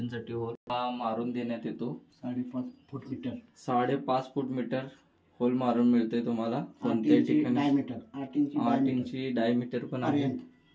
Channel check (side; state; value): both; identical; correlation 1.00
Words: होल मारून देण्यात येतो। 5.5 फूट मीटर होल मारून मिळते तुम्हाला कोणत्याही ठिकाणी। 8 इंची डायमीटर पण आहे